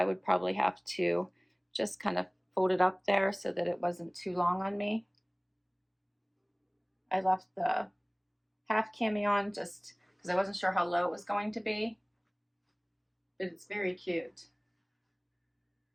would probably have to just kind of fold it up there so that it wasn't too long on me. I left the half cami on just because I wasn't sure how low it was going to be, but it's very cute.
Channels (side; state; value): both; identical; correlation 1.00